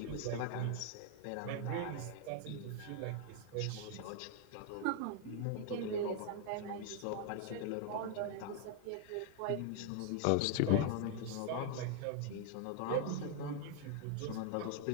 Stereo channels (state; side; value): different; both; correlation 0.00